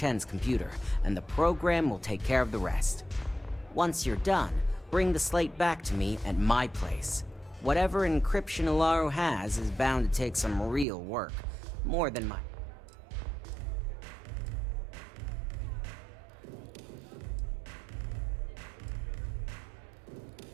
computer, and the program will take care of the rest. Once you're done, bring the slate back to me at my place. Whatever encryption Ularu has is bound to take some real work. More than my...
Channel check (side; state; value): left; drops out; at 10.9 s